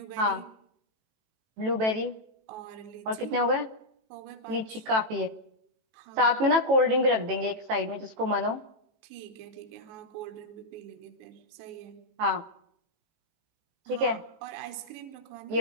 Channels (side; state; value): left; late; 18 ms